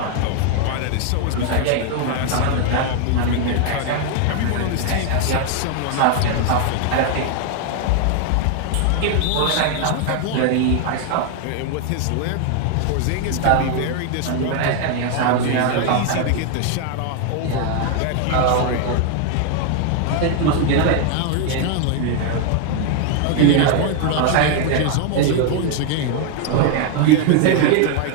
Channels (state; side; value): different; both; correlation 0.00